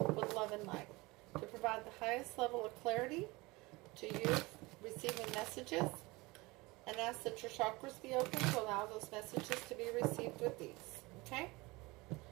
love and light to provide the highest level of clarity to you receiving messages, and ask that your chakras be open to allow those messages to be received with ease. Okay?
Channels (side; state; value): left; quieter; 23.1 dB